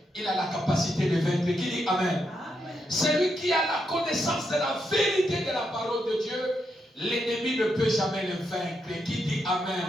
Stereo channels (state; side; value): normal; both; correlation 0.82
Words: il a la capacité de vaincre. Qui dit Amen? Amen. Celui qui a la connaissance de la vérité de la parole de Dieu, l'ennemi ne peut jamais le vaincre. Qui dit Amen?